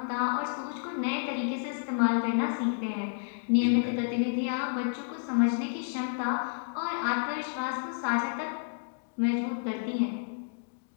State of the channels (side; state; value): right; silent; digital silence